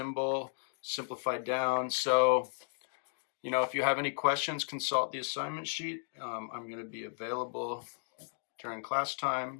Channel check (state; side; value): silent; right; digital silence